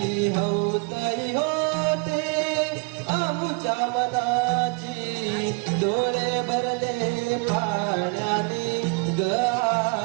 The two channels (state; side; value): quieter; left; 31.8 dB